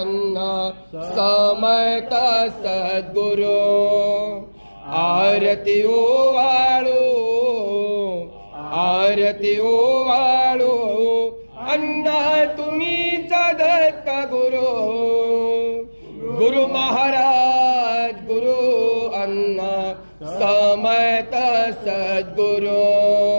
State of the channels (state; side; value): inverted; both; correlation -1.00